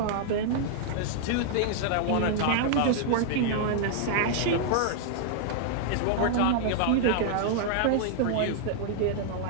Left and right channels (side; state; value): both; different; correlation -0.01